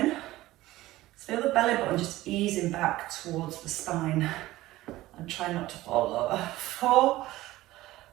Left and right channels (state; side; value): quieter; left; 16.9 dB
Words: Feel the belly button just easing back towards the spine. And try not to fall over. 4,